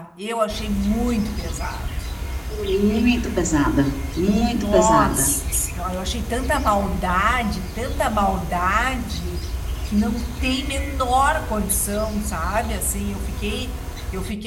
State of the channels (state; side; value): identical; both; correlation 1.00